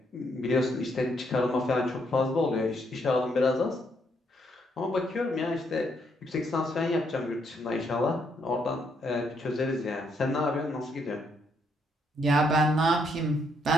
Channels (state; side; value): normal; both; correlation 0.74